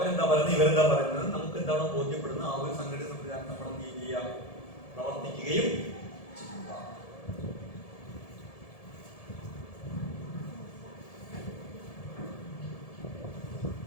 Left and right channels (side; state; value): right; late; 1.7 ms